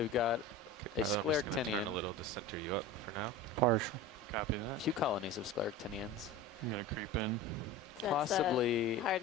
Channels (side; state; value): both; normal; correlation 0.31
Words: got a I'm just gonna turn a scleractinian, little to center you up for now. Partial. Copy a that. few colonies of scleractinians. I'm going to creep in. That's Possibly, the hard